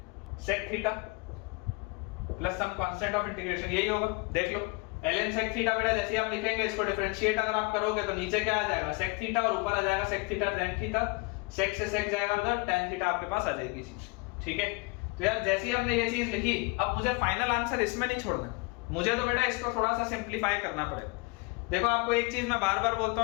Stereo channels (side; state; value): right; quieter; 28.0 dB